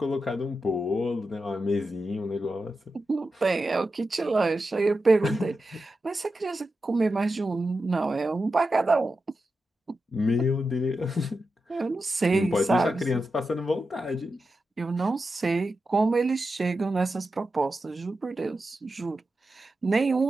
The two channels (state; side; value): normal; both; correlation 0.90